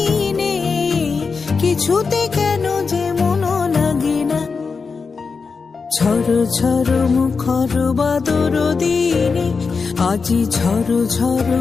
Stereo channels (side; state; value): right; quieter; 4.9 dB